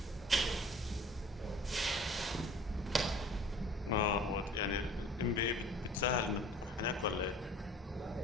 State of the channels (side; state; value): both; normal; correlation 0.47